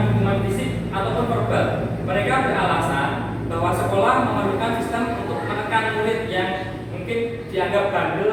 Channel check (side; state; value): both; identical; correlation 1.00